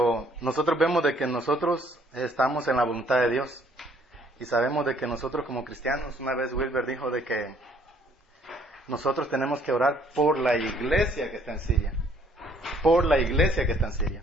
nosotros vemos de que nosotros estamos en la voluntad de Dios. Y sabemos de que nosotros como cristianos, una vez Wilber dijo de que nosotros tenemos que orar por la iglesia que está en Siria. Por la iglesia que está en Siria.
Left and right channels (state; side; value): normal; both; correlation 0.62